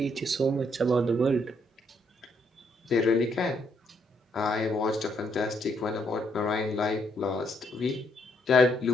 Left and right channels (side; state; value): both; normal; correlation 0.73